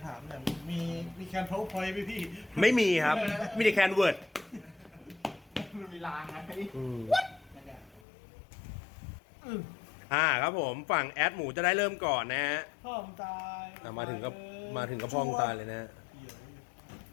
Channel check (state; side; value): drops out; right; at 8.0 s